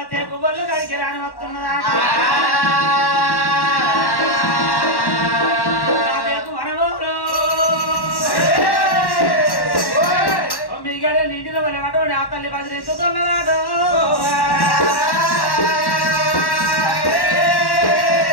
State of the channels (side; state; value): right; late; 1.1 ms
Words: తేకు బొల్లు గడికి రాని వస్తున్నదా వనమూరు 9 గడియలు నిండిన వాళ్ళు అటువంటి ఆ తల్లి బదిలిస్తున్నదాడు